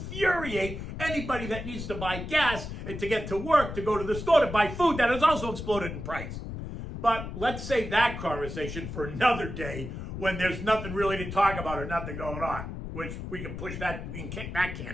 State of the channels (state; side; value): noise; left; rumble, 7 dB below the sound